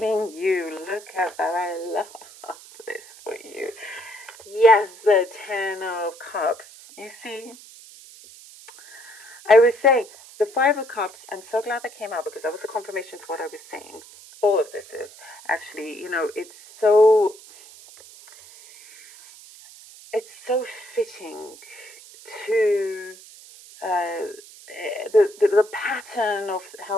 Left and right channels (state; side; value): noise; right; hiss, 20 dB below the sound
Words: you? Look at that, I love this for you. Yes, the Ten of Cups. You see? I was saying, the Five of Cups, I'm so glad that came out, because that was a confirmation to what I was saying. All of this is actually, it's so fitting to the pattern of